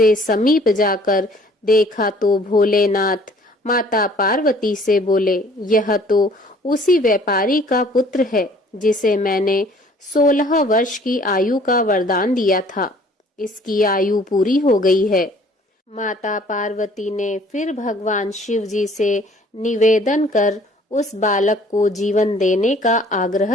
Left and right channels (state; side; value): normal; both; correlation 0.55